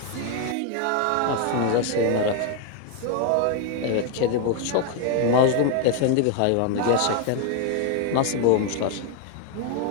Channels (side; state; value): both; different; correlation 0.01